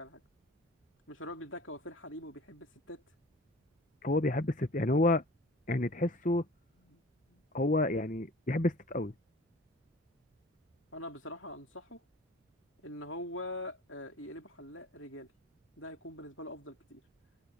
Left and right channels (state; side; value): normal; both; correlation 0.44